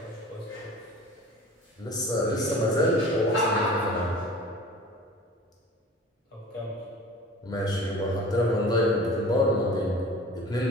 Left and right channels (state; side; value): normal; both; correlation 0.41